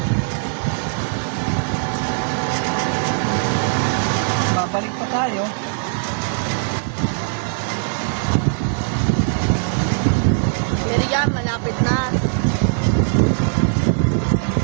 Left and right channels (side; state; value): left; silent; 66 dB below the other